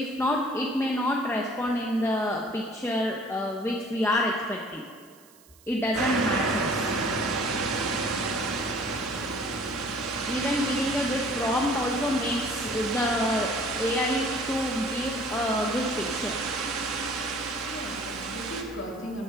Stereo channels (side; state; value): right; noise; hiss, 26 dB below the sound